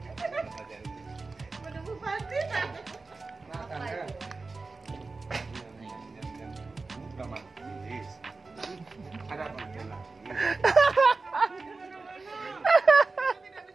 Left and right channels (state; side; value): quieter; left; 3.8 dB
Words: Makan ya. Udah manis. Ada apa lagi?